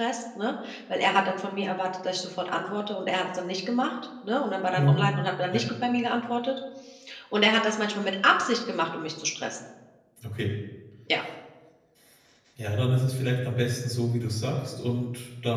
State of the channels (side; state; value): both; identical; correlation 1.00